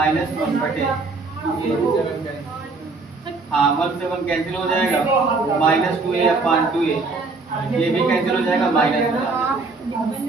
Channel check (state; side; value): quieter; left; 3.8 dB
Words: 1 बटे 2a। हाँ 1 से 1 कैंसिल हो जाएगा, माइनस 2a अपॉन 2a, ये भी कैंसिल हो जाएगा, माइनस